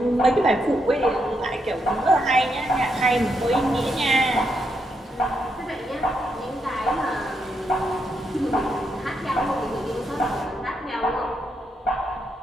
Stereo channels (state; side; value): normal; both; correlation 0.80